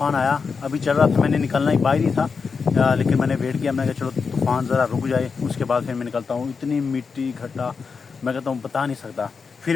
آیا۔ ابھی چل رہا تھا، میں نے نکلنا ہی باہر ہی تھا، لیکن میں نے ویٹ کیا، میں نے کہا چلو طوفان ذرا رک جائے اس کے بعد پھر میں نکلتا ہوں۔ اتنی مٹی گھٹا میں کہتا ہوں بتا نہیں سکتا۔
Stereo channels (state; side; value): quieter; right; 5.3 dB